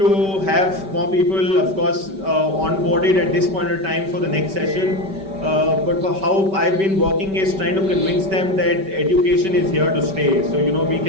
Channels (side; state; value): left; late; 5.2 ms